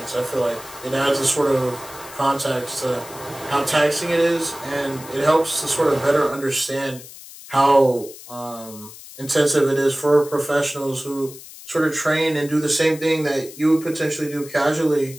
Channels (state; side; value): noise; left; hiss, 16 dB below the sound